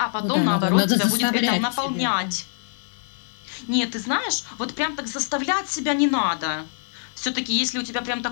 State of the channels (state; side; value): silent; right; digital silence